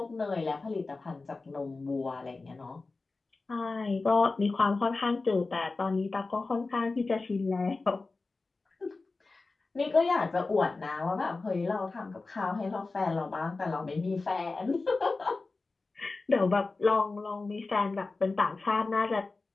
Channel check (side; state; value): right; quieter; 3.7 dB